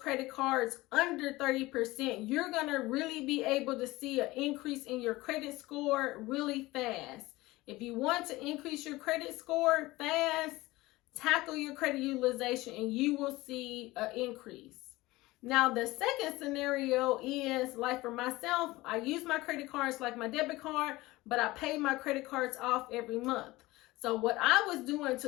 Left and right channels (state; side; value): quieter; right; 19.7 dB